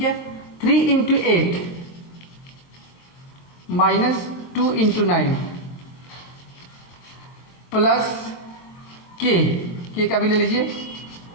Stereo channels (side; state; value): right; late; 23 ms